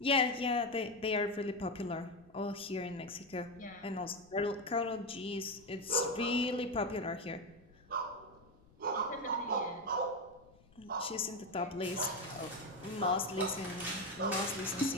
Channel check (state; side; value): noise; left; rumble, 27 dB below the sound